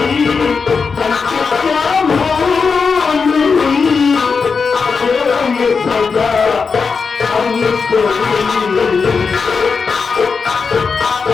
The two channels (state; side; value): quieter; right; 5.2 dB